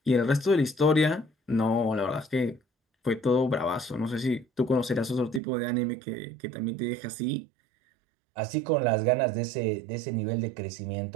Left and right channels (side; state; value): left; drops out; at 5.4 s